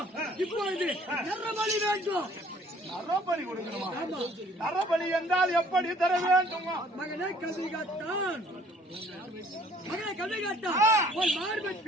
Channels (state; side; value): normal; both; correlation 0.57